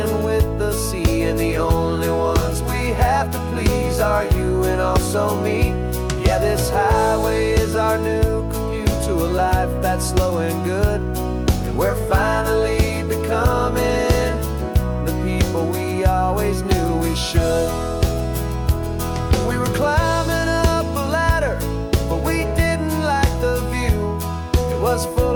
with the sea, and the only ones we have to please are you and also me. Yeah, this highway is our new commute to a life that's slow and good, and we're finally becoming the people we always knew we should. We were climbing up a ladder, but we didn't like the view. It was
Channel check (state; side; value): identical; both; correlation 1.00